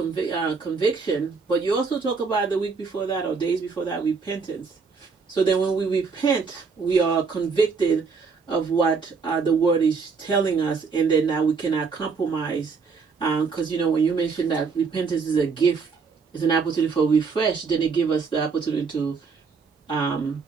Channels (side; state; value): left; quieter; 5.1 dB